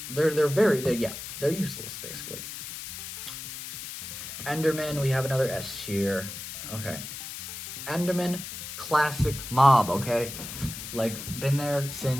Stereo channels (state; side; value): noise; left; hiss, 9 dB below the sound